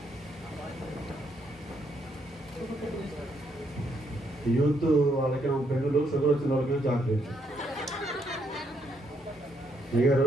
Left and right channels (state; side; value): normal; both; correlation 0.74